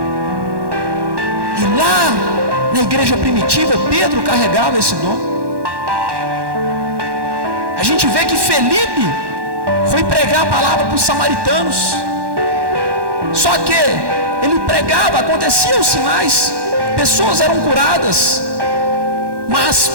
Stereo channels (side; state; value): left; late; 1.1 ms